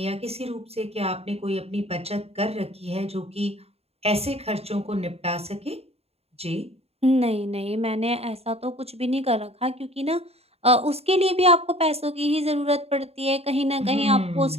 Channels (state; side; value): late; left; 0.29 ms